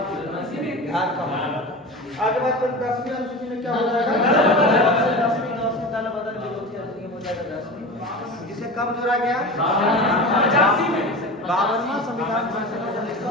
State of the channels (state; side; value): normal; both; correlation 0.30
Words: बिहार का मामला। आगे बात करें 10वीं अनुसूची में क्या हो जाएगा? 10वीं दल बदल विरोधी अधिनियम हो जाएगा 10वीं, जिसे कब जोड़ा गया? 52वां संविधान संशोधन